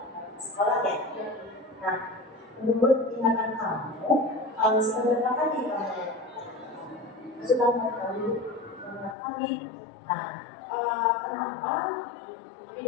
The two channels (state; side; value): drops out; right; at 9.2 s